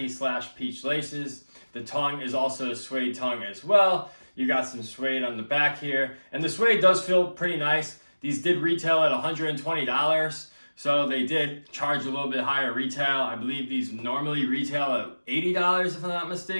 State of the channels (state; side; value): inverted; both; correlation -1.00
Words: / peach laces. The tongue is also a suede tongue as well. You got some suede on the back here, and the suede does feel pretty nice. These did retail at $120. So they did charge a little bit higher retail. I believe these normally retail at $80 if I'm not